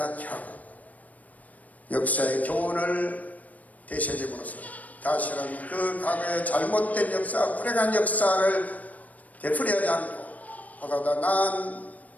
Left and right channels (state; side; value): late; right; 0.073 ms